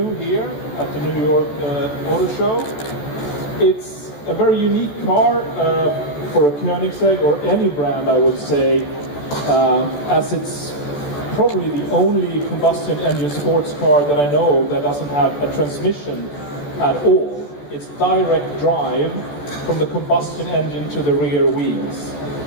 here at the New York Auto Show. It's a very unique car for a Koenigsegg, or any brand I would say, as it's probably the only combustion engine sports car that I know of that doesn't have a transmission at all. It's direct drive from the combustion engine to the rear wheels.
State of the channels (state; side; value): late; right; 14 ms